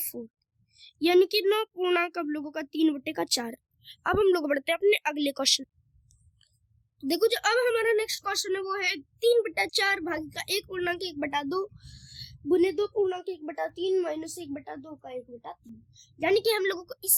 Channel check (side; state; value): both; identical; correlation 1.00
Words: यानी कि 9 पूर्णांक हम लोगों का 3 बटे का 4। अब हम लोग बढ़ते हैं अपने अगले क्वेश्चन। देखो जो अब हमारा नेक्स्ट क्वेश्चन है वो है 3 बटा 4 भाग का 1 पूर्णांक 1 बटा 2 गुने 2 पूर्णांक 1 बटा 3 माइनस 1 बटा 2 का 1 बटा 3। यानी कि हम लोगों को